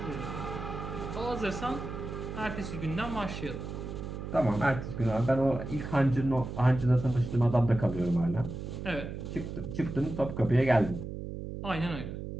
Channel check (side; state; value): right; noise; hum, 7 dB below the sound